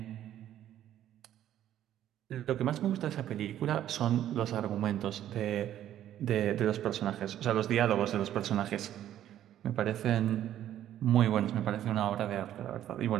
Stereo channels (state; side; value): quieter; left; 11.7 dB